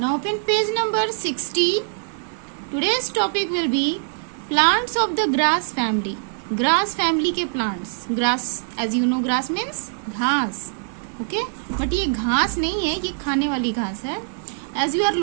open page number 60. Today's topic will be plants of the grass family. Grass family के plants. Grass, as you know, grass means घास. Okay? But ये घास नहीं है, ये खाने वाली घास है. As you are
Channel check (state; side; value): silent; left; digital silence